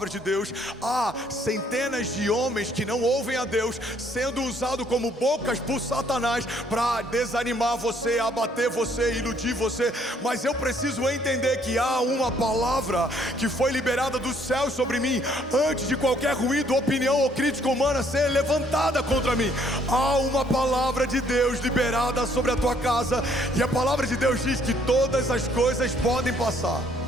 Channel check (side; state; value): both; normal; correlation 0.65